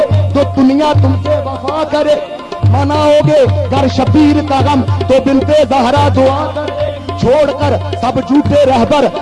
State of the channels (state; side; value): identical; both; correlation 1.00